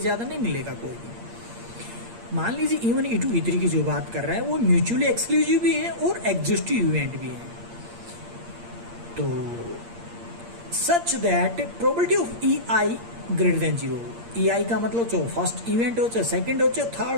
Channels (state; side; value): late; left; 8.6 ms